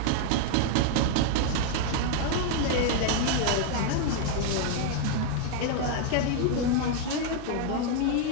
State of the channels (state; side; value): different; both; correlation 0.00